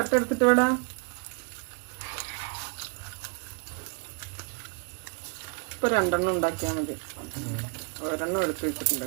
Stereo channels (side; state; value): left; quieter; 34.8 dB